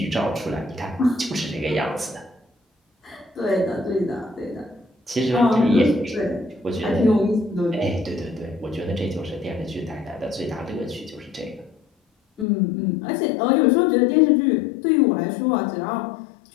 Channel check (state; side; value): drops out; right; at 12.5 s